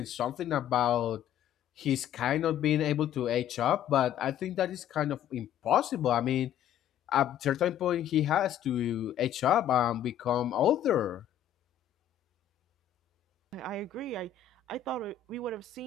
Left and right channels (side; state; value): right; quieter; 10.1 dB